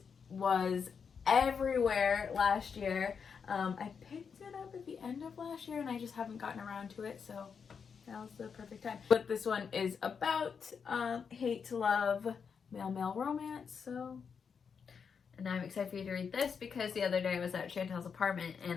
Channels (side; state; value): right; quieter; 6.3 dB